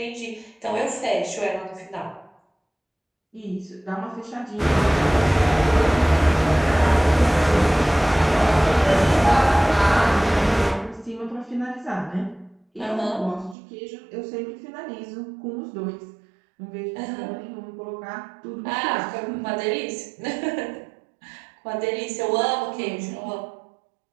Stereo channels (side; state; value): left; drops out; at 13.6 s